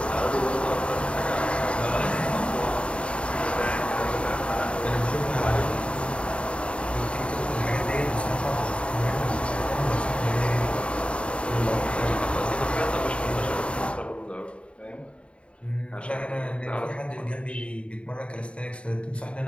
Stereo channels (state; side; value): late; right; 0.059 ms